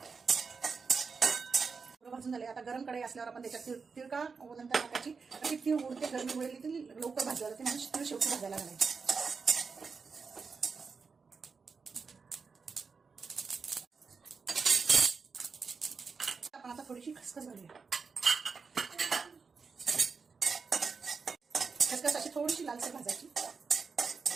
भाजून झाले। आता गरम कढई असल्यावर आपण त्याच्यात तीळ का नंतर टाकायची। अशी तीळ उडते गरमी वेळेली ती लवकर भाजायला लागते, म्हणजे तीळ शेवटी भाजायला घालायची। आपण आता थोडीशी खसखस घालूया। खसखस अशी थोडीशी लालसर भाजायची।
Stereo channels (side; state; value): left; quieter; 5.1 dB